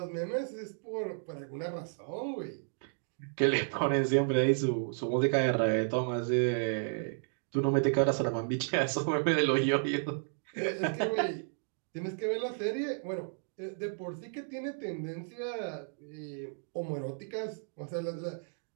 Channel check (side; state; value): left; silent; digital silence